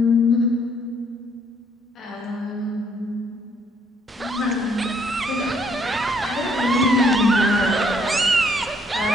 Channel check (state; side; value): normal; both; correlation 0.67